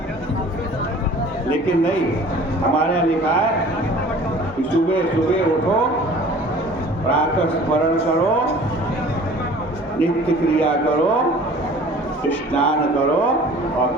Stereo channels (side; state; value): both; normal; correlation 0.47